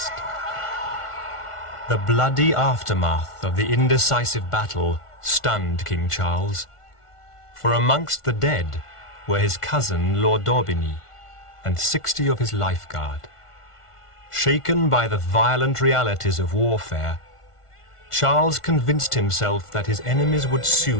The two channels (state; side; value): late; right; 1.5 ms